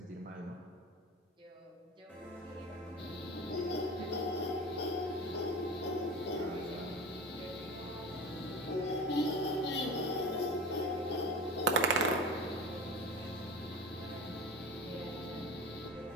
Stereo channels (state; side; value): normal; both; correlation 0.32